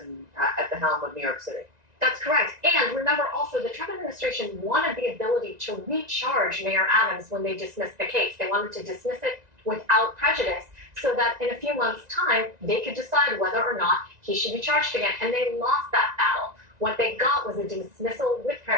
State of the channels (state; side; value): late; left; 1.9 ms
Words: at the helm of New York City. That's correct. And remember also, the Trump administration wanted the ability to recharge Mayor Adams when they dismissed the case. They wanted to dismiss it without prejudice so that in a few months' time, they could decide whether or not he should be charged again. And they lost that battle. What they got was a dismissal with